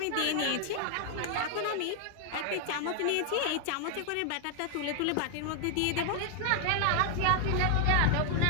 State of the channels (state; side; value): different; both; correlation 0.00